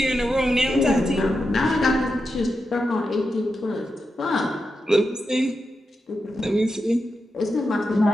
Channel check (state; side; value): normal; both; correlation 0.88